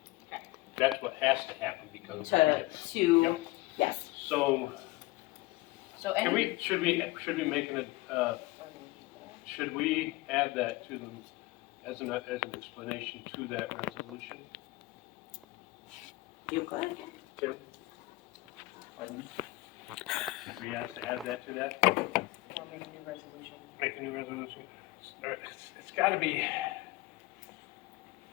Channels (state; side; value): quieter; right; 20.4 dB